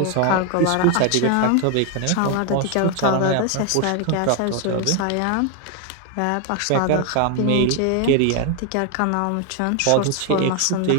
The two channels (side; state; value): both; different; correlation 0.01